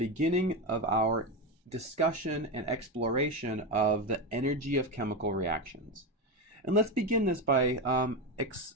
of our discussion and exploration of the energy of chemical reactions. And let's begin this by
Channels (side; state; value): both; normal; correlation 0.14